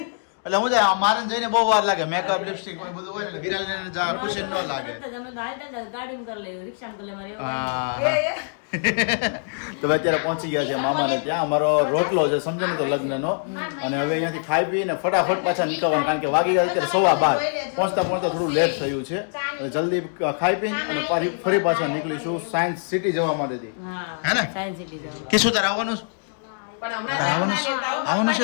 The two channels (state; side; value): silent; right; digital silence